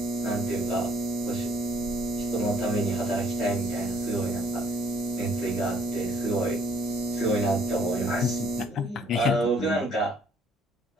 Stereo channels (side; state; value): both; normal; correlation 0.63